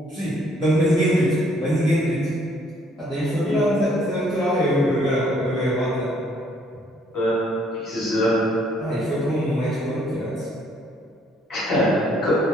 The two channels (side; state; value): both; normal; correlation 0.65